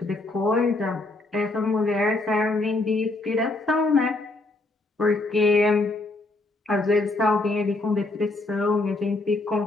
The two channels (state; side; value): quieter; right; 3.0 dB